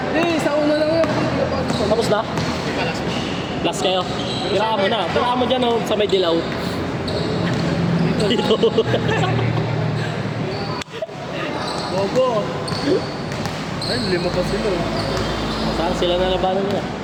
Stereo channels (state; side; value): identical; both; correlation 1.00